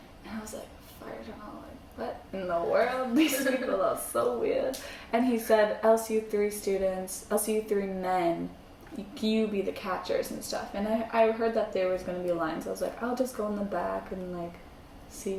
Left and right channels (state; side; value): identical; both; correlation 1.00